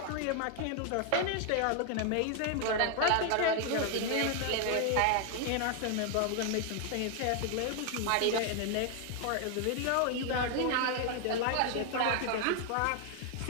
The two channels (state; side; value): different; both; correlation 0.00